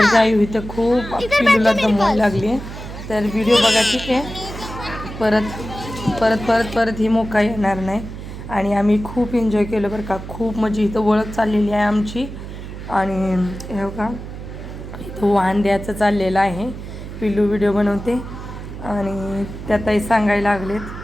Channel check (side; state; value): right; noise; hum, 10 dB below the sound